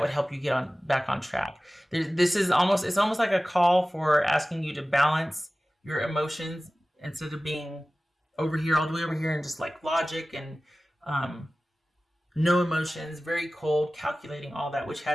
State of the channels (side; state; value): both; normal; correlation 0.97